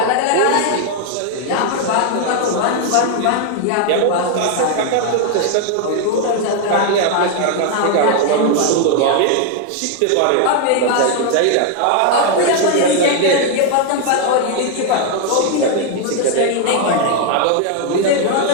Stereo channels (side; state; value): both; different; correlation 0.00